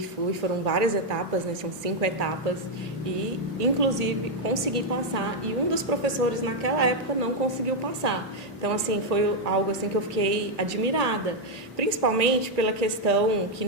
foram várias etapas, né, são 5 etapas. E inclusive consegui passar. E um dos professores naquela época não conseguiu passar. Então assim, foi algo assim que eu fiquei admirada. Principalmente pela questão que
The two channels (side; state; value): both; normal; correlation 0.01